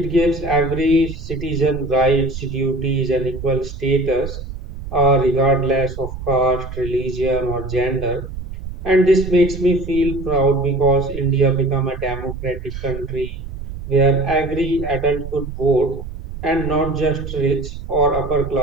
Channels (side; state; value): right; noise; rumble, 10 dB below the sound